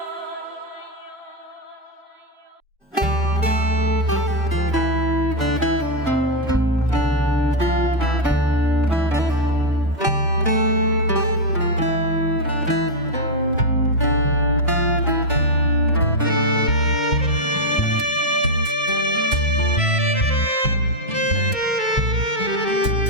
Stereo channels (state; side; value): normal; both; correlation 0.00